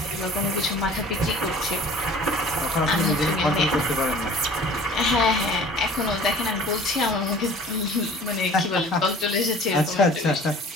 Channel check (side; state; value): both; normal; correlation 0.47